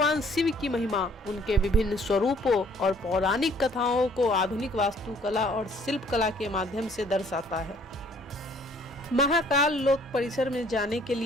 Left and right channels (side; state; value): both; normal; correlation 0.59